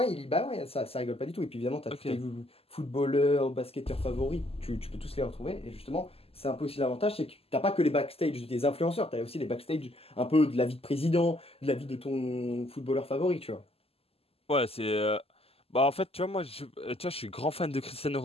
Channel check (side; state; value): right; late; 0.28 ms